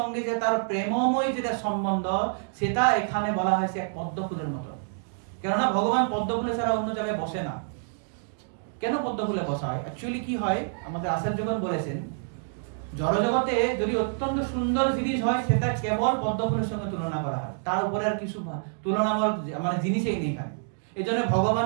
যে তার প্রেমময় যেটা সম্বন্ধ, সেটা এখানে বলা হয়েছে এক পদ্মফুলের মতো। কেননা ভগবান পদ্মফুলে ছাড়া অন্য জায়গায় বসে না। কেন পদ্মফুলে বসা হয়? অ্যাকচুয়ালি কি হয়, আমাদের আচার্যগণ বলেছেন জড়জগতে যদি অত্যন্ত সুন্দর জিনিস হয়, সেটা কেবল পদ্মফুলের সঙ্গে তুলনা করা হয়, তার উপরে আর কিছু তুলনামূল মানে জিনিসই নেই এখানে। এই জন্য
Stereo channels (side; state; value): left; silent; digital silence